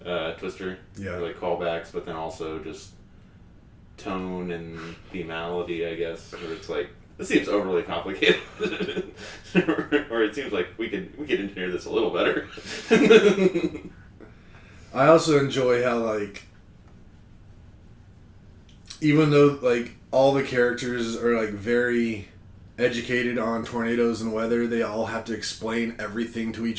Twister. Yeah. Like callbacks, but then also just tone and themality, I guess. Where it's like, this seems overly complicated. Or it seems like we could engineer this a little better. I also enjoy how, like, even though, like, all the characters are, like, very educated on tornadoes and weather, they all have to explain everything to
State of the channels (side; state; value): both; identical; correlation 1.00